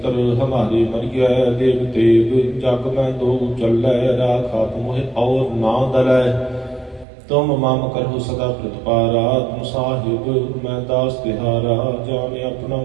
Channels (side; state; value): left; drops out; at 7.1 s